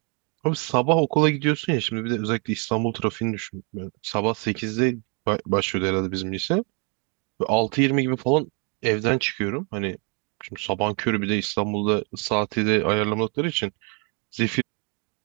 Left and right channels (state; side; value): quieter; left; 35.2 dB